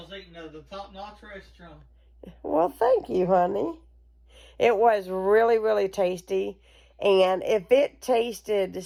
eating the top-notch restaurant. Well, thank you, honey. It was really, really tasty. And if it tasted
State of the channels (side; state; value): both; identical; correlation 1.00